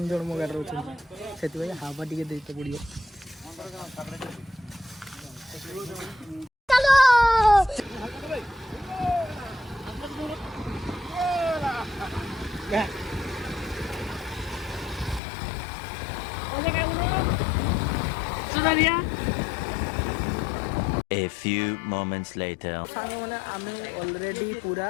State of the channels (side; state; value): right; drops out; at 15.2 s